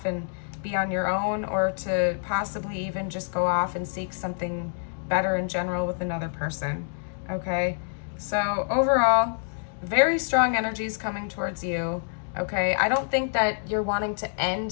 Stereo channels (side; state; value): right; silent; digital silence